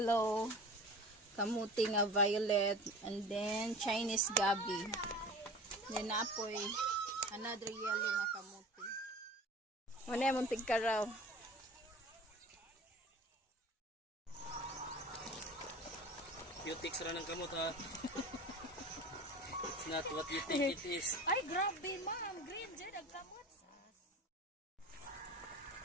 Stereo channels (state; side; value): normal; both; correlation 0.38